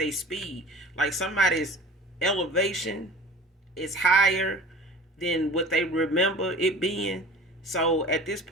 speed. Like somebody's elevation is higher than what they remember it being. So at this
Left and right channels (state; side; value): normal; both; correlation 0.41